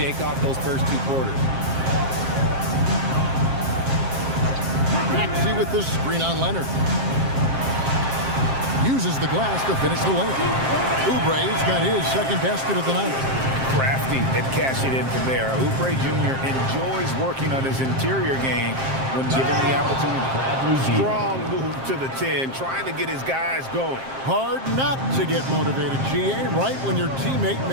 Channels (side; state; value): left; late; 7.5 ms